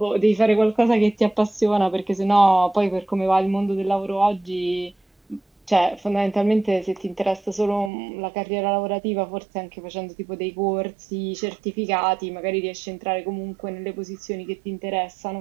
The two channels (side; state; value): left; drops out; at 7.9 s